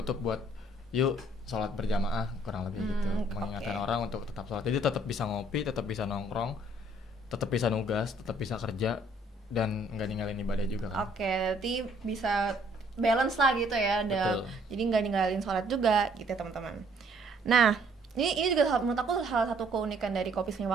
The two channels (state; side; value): normal; both; correlation 0.63